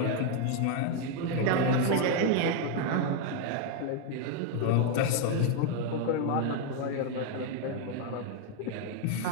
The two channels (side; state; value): both; different; correlation 0.01